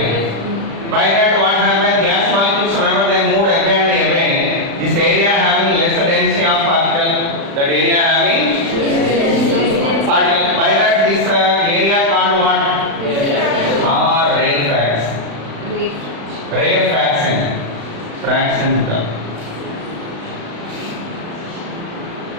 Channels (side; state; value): left; late; 36 ms